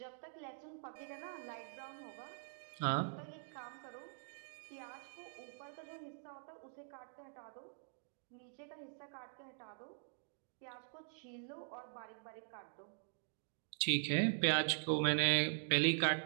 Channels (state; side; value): silent; left; digital silence